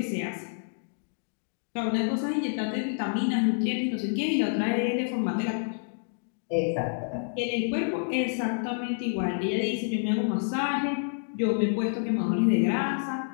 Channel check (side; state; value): right; silent; digital silence